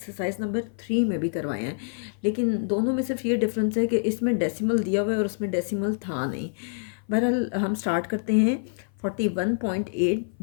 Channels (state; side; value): silent; right; 57 dB below the other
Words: नंबर 3 में भी करवाए हैं, लेकिन दोनों में सिर्फ ये डिफरेंस है कि इसमें डेसिमल दिया हुआ है और उसमें डेसिमल था नहीं। बहरहाल हम स्टार्ट करते हैं। 41.8